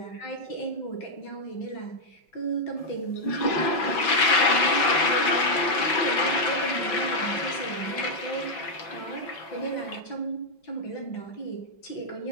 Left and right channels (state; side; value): late; right; 5.4 ms